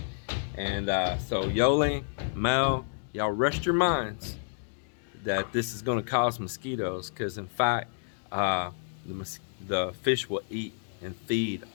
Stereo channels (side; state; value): right; silent; digital silence